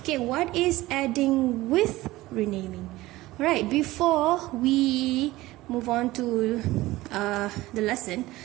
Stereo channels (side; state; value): left; quieter; 18.1 dB